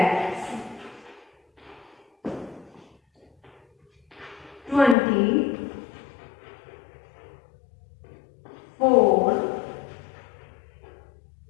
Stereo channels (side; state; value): right; drops out; at 5.0 s